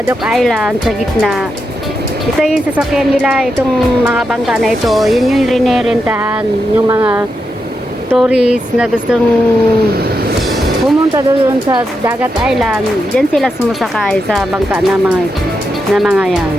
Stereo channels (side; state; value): both; normal; correlation 0.85